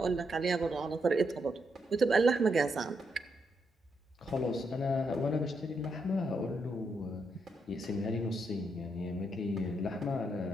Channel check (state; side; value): normal; both; correlation 0.80